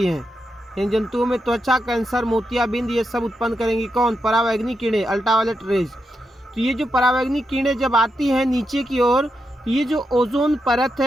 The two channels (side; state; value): both; normal; correlation 0.85